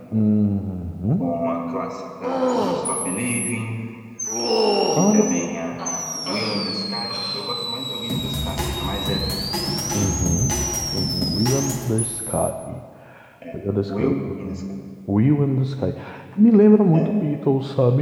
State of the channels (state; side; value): identical; both; correlation 1.00